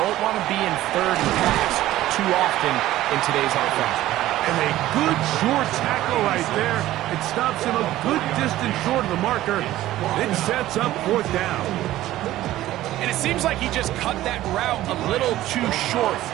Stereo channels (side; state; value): left; quieter; 14.9 dB